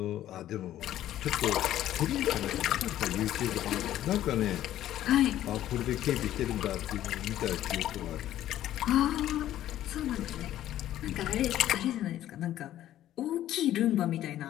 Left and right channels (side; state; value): right; quieter; 12.8 dB